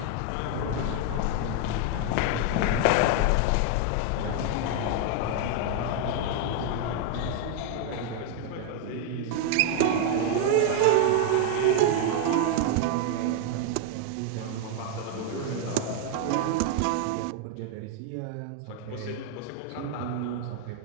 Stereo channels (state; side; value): different; both; correlation 0.00